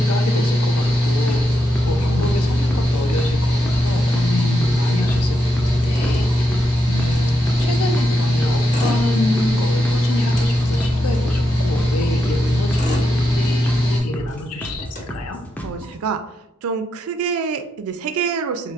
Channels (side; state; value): both; normal; correlation 0.84